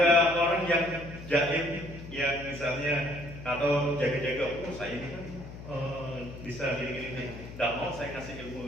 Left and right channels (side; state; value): left; noise; hum, 13 dB below the sound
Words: orang yang jaim, yang misalnya atau jaga-jaga, saya ini kan bisa gini-gini, nggak mau saya kasih